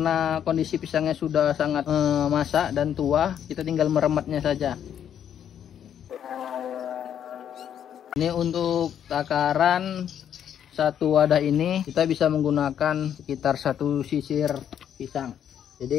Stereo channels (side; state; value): right; quieter; 9.4 dB